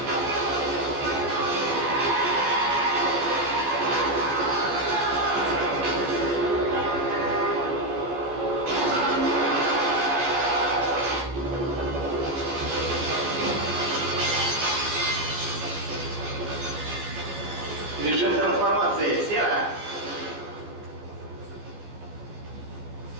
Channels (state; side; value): late; left; 14 ms